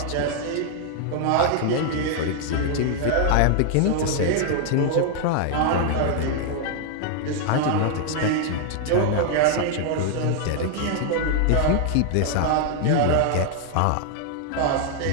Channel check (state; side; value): different; both; correlation 0.00